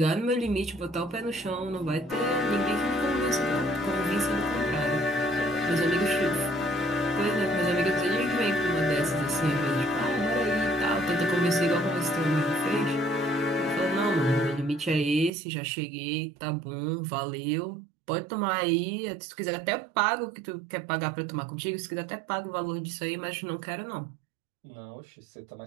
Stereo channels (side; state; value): left; drops out; at 15.3 s